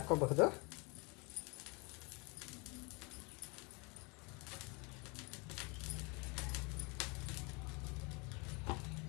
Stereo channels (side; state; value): right; quieter; 30.3 dB